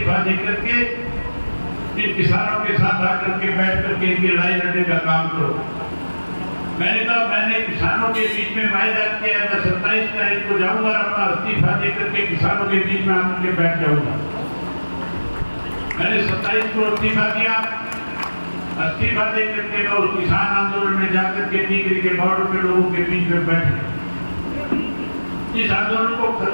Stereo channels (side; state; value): both; inverted; correlation -1.00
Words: देकर के इन किसानों के साथ आकर के बैठ करके इनकी लड़ाई लड़ने का काम करो। मैंने कहा, मैंने किसानों के बीच में वायदा किया, मैं 27 तारीख को जाऊंगा, अपना इस्तीफा देकर के किसानों के बीच में आकर के बैठ जाऊंगा। मैंने 27 को इस्तीफा दिया। इस्तीफा देकर के मैं उस किसान आंदोलन में जाकर के टीकरी के बॉर्डर पे लोगों के बीच में बैठ गया। इस आंदोलन को